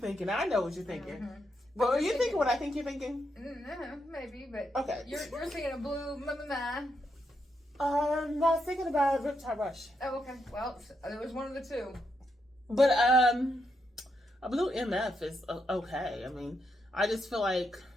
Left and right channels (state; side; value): normal; both; correlation 0.81